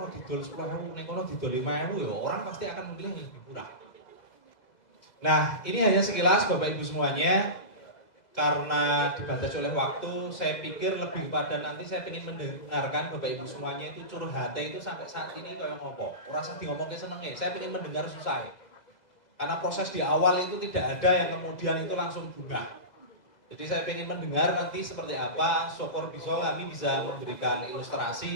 didol 10.000, yang kono didol 5.000 ya orang pasti akan memilih yang lebih murah. Nah, ini hanya sekilas Bapak Ibu semuanya. Karena dibatasi oleh waktu, saya pikir lebih kepada nanti saya ingin mendengarkan Bapak Ibu semuanya itu curhatnya itu sampai saat ini kayak ngopo. Rasa di ngomongnya senengnya, saya ingin mendengar susah. Karena proses di awal itu tidak ada yang kemudian itu langsung bunga. Jadi saya ingin mendengar nanti seperti apa, syukur kami bisa memberikan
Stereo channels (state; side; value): late; right; 2.0 ms